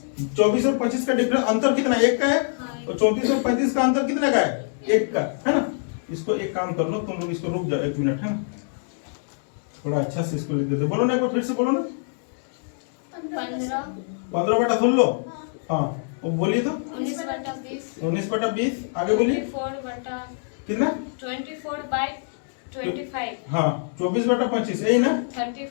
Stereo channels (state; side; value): silent; right; digital silence